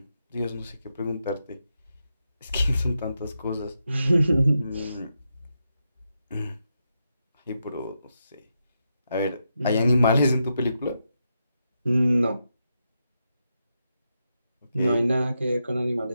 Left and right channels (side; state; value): both; inverted; correlation -0.85